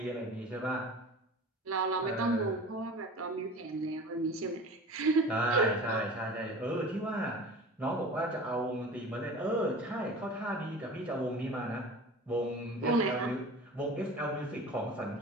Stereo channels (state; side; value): normal; both; correlation 0.38